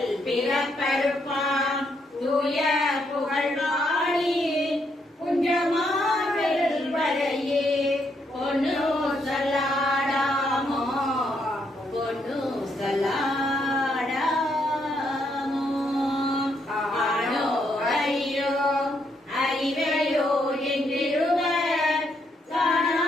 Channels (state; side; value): normal; both; correlation 0.76